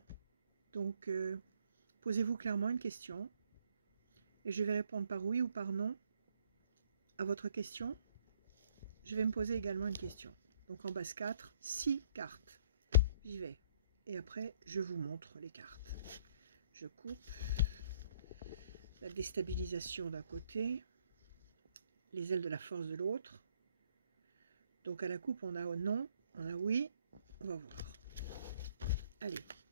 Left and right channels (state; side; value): inverted; both; correlation -0.64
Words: Donc, posez-vous clairement une question. Et je vais répondre par oui ou par non à votre question. Je vais me poser également une question. Donc en base 4, 6 cartes. J'y vais. Et après, je vous montre les cartes. Je coupe. La déstabilisation d'un côté. Les ailes de la force de l'autre. Donc à la coupe, on a non, on a oui. On va voir. Allez.